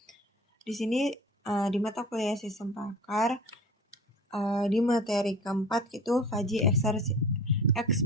Di sini di mata kuliah Sistem Pakar di materi keempat itu Fuzzy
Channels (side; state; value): both; normal; correlation 0.40